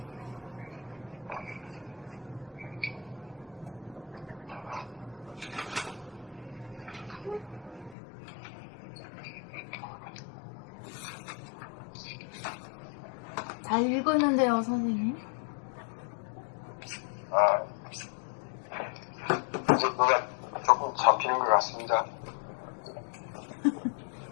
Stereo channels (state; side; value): drops out; right; at 8.0 s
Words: 잘 읽었는데요, 선생님. 이제 뭐가 조금 잡히는 것 같습니다.